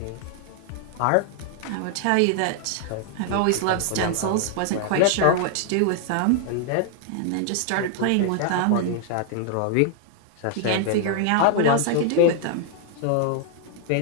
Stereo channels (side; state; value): both; different; correlation 0.00